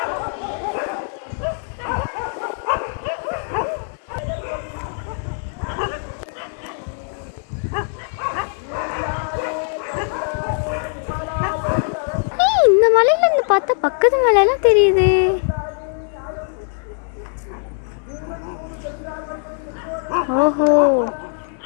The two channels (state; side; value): silent; right; digital silence